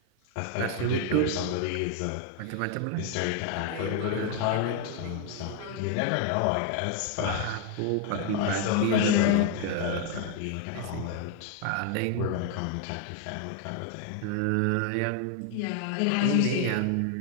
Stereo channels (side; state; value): both; different; correlation 0.01